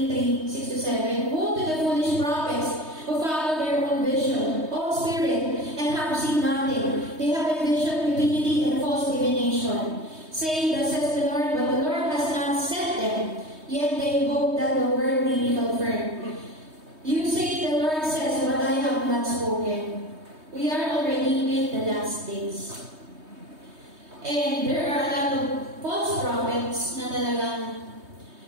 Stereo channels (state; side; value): late; left; 3.2 ms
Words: woe to the foolish prophets who follow their own vision, own spirit, and have seen nothing. They have envisioned stupidity and false divination, saying, thus says the Lord, but the Lord has not sent them, yet they hope that the word may be confirmed. You say the Lord says, but I have not spoken. We are already in the last days. And there are a lot of false prophets na talagang